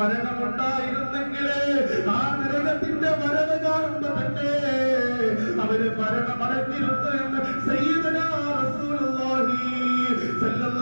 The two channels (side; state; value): both; inverted; correlation -1.00